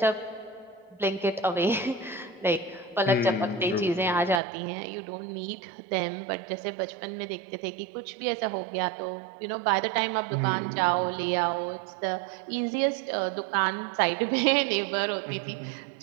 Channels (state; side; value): drops out; left; at 4.4 s